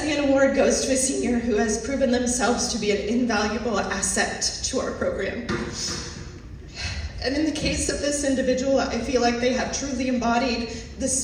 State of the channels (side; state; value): both; identical; correlation 1.00